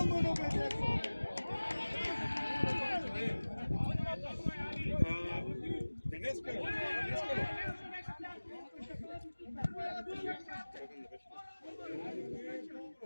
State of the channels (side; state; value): both; inverted; correlation -1.00